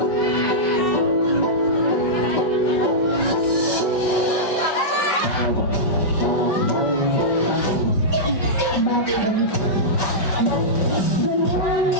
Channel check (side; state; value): right; late; 5.2 ms